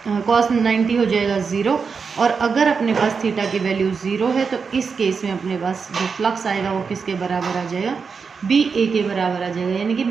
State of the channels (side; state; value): left; quieter; 5.4 dB